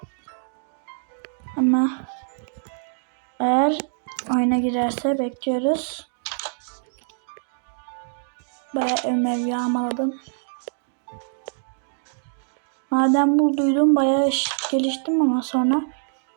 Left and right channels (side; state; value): left; silent; digital silence